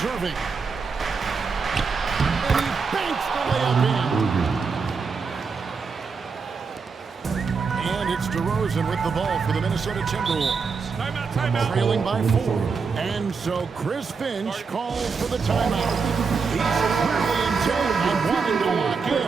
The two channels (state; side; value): quieter; left; 5.1 dB